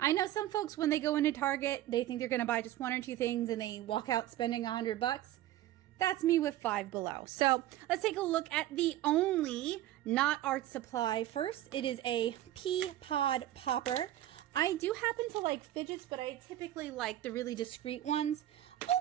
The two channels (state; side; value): quieter; left; 13.7 dB